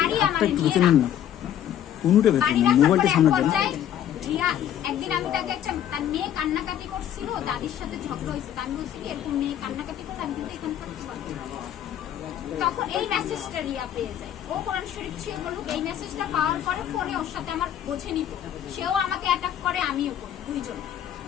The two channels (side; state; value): right; quieter; 10.5 dB